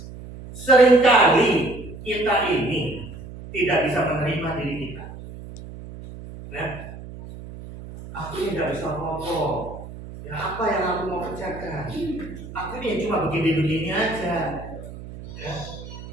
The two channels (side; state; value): right; noise; hum, 13 dB below the sound